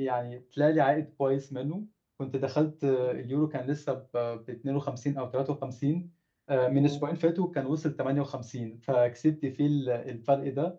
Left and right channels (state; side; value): identical; both; correlation 1.00